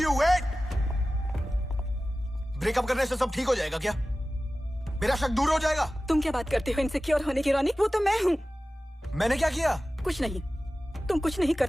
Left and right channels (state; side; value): normal; both; correlation 0.96